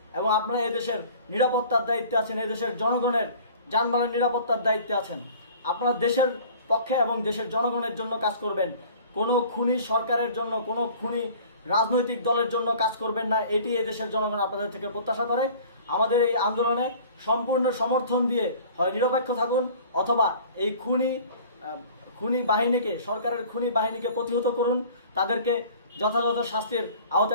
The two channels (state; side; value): inverted; both; correlation -0.47